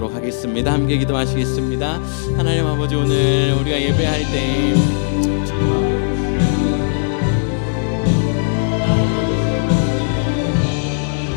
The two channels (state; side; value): silent; right; digital silence